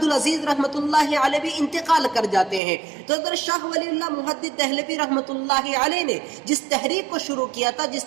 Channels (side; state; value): left; drops out; at 2.6 s